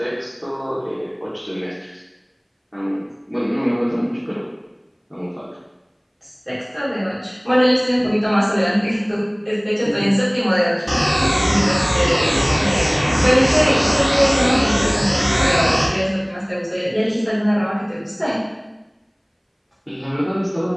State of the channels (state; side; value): identical; both; correlation 1.00